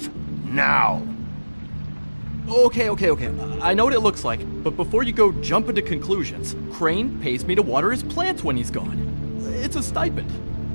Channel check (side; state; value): both; inverted; correlation -1.00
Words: Now. Okay. I know what it looks like, but before you go jumping to conclusions, Crane pays me to water his plants when he's gone. It's a stipend,